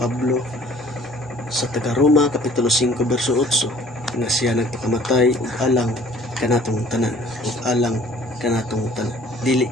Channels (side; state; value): both; normal; correlation 0.53